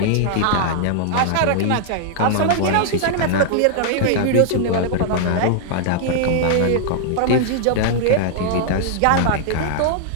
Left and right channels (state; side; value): different; both; correlation -0.01